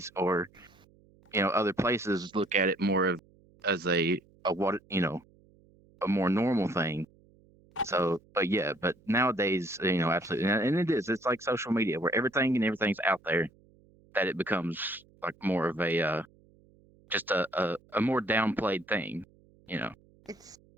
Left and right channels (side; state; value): right; noise; hum, 29 dB below the sound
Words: or other places, look at it more of as a more normal thing. So, but yeah, but nowadays, absolutely, and it is. It's like social media where everything's out there. that it becomes like more of a just a more downplayed thing, you know.